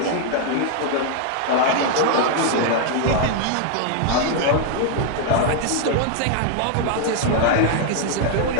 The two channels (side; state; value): both; different; correlation 0.00